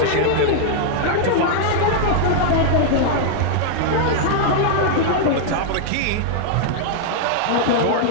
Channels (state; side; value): different; both; correlation -0.01